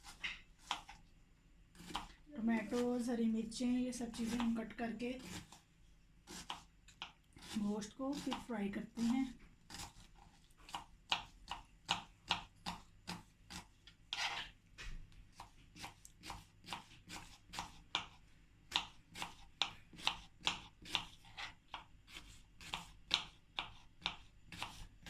टमाटोज़, हरी मिर्चें, ये सब चीज़ें हम कट करके गोश्त को फिर फ्राई करते हैं।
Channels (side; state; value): both; identical; correlation 1.00